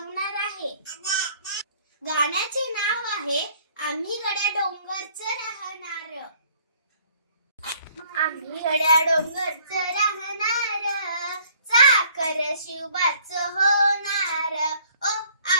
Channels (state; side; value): inverted; both; correlation -0.59